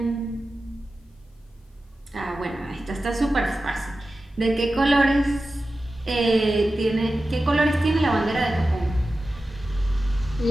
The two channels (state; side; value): normal; both; correlation 0.94